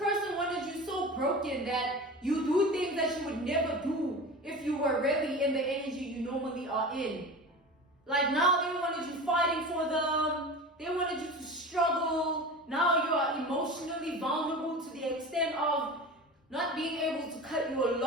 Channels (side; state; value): both; normal; correlation 0.32